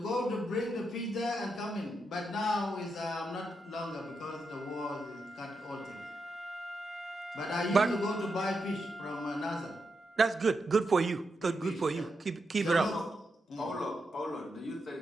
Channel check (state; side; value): normal; both; correlation 0.84